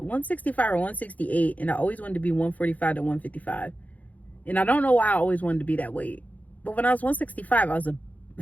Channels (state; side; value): late; right; 0.075 ms